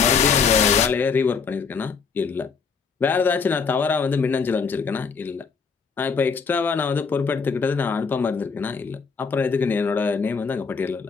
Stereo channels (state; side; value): quieter; right; 5.5 dB